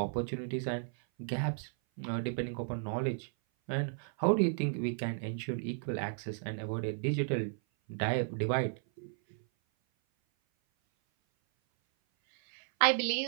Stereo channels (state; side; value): silent; left; 55 dB below the other